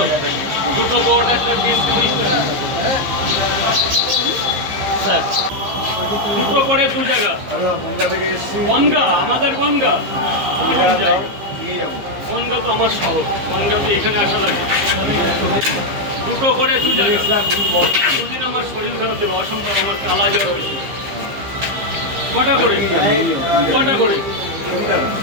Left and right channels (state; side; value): late; left; 15 ms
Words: দুটো বট, একটা ডিম, 30 টাকা স্যার। দুটো করে 2 জায়গা। বনগা, আমাদের বনগা। বনগা তো আমার শহর। বনগা তো এখানে আসা লাগে। দুটো করে 2 জায়গা। দুদিন আমার শরীর খারাপ ছিল, অসম্ভব। আমার কালা জ্বর হয়েছিল। কটা করে? কটা করে?